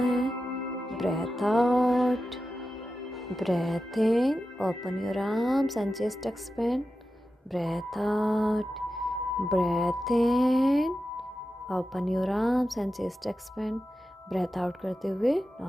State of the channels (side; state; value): both; normal; correlation 0.92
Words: है। Breathe out, breath in, open your arms and chest expand. Breath out, breath in, open your arms and chest expand. Breath out करते हुए